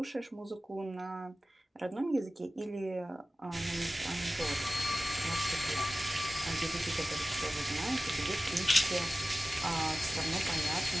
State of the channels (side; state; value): both; normal; correlation 0.96